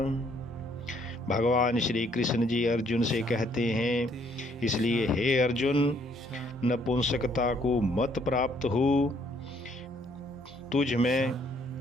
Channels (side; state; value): both; normal; correlation 0.66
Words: भगवान श्री कृष्ण जी अर्जुन से कहते हैं, इसलिए हे अर्जुन, नपुंसकता को मत प्राप्त हो। तुझ में